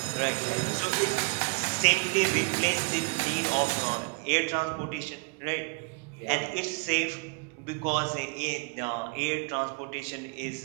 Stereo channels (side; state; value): left; quieter; 34.2 dB